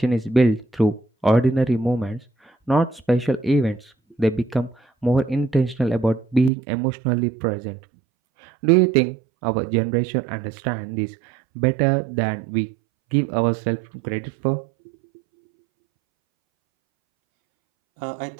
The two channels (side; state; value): left; drops out; at 6.5 s